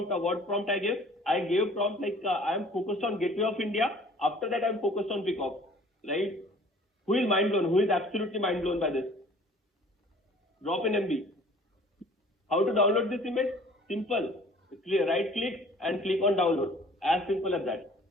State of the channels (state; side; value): normal; both; correlation 0.51